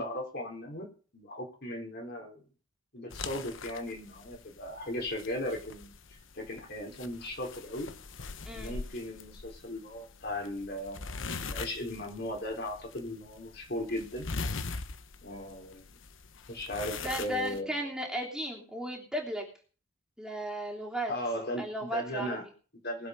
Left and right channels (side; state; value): both; normal; correlation 0.33